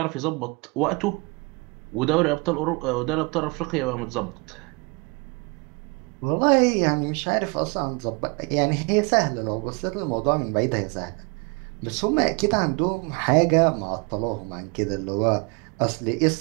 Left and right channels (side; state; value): left; quieter; 29.7 dB